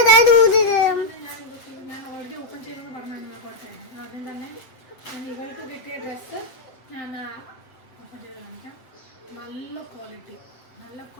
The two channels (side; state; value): right; late; 7.8 ms